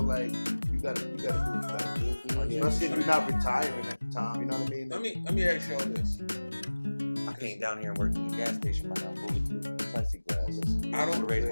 like you gotta do what you gotta do. Mhm. Especially if you're not retiring at the time. You know what I mean? Let me ask y'all this. I came down here and worked in the gas station behind bulletproof plexiglass. I don't to raise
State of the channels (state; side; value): inverted; both; correlation -1.00